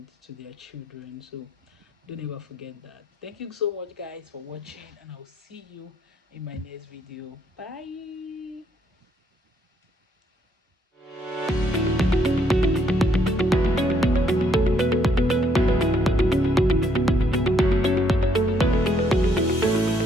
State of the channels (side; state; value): both; normal; correlation 0.70